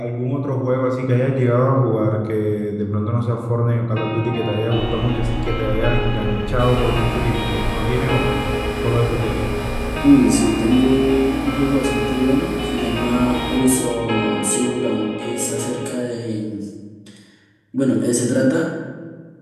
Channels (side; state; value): both; identical; correlation 1.00